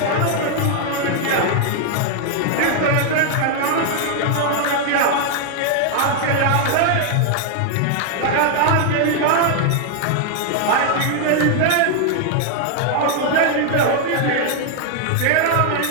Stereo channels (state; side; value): different; both; correlation 0.00